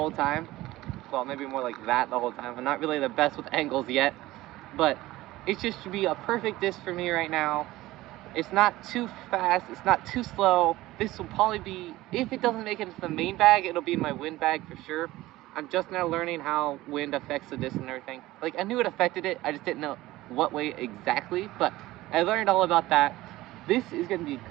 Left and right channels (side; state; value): left; quieter; 17.5 dB